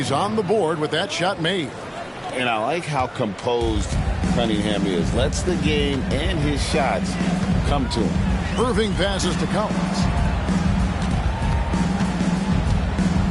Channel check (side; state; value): both; identical; correlation 1.00